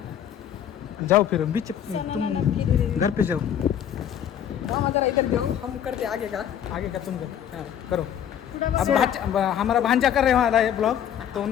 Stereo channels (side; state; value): right; quieter; 9.6 dB